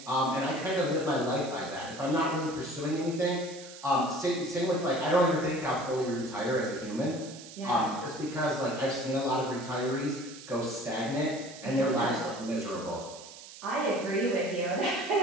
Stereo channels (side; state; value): right; noise; hiss, 16 dB below the sound